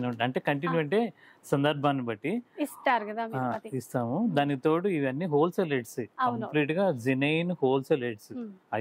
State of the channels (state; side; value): identical; both; correlation 1.00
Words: ఉంటాయి. అంటే కంటిన్యూ అంటే సందర్భాన్ని బట్టి ఇస్తారు కదా, ఇస్తాము. దానికి తోడు ఇవన్నీ హోల్సేల్ రేట్స్, కంప్లీట్ గా జెన్యూన్ హోల్సేల్ రేట్స్.